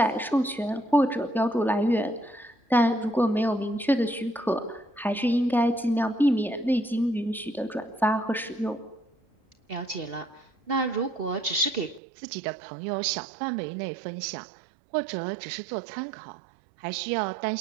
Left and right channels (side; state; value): left; drops out; at 12.0 s